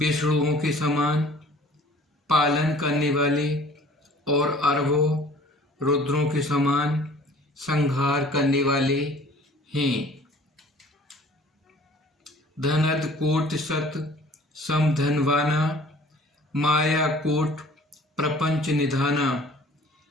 के समान पालन करने वाले और अरबों रुद्रों के समान संहार करने वाले हैं। धनद कोट सत सम धनवाना माया कोट प्रपंच निधाना।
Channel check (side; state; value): both; normal; correlation 0.50